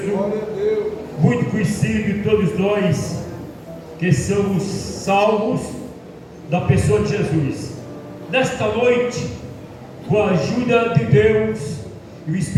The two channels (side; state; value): both; identical; correlation 1.00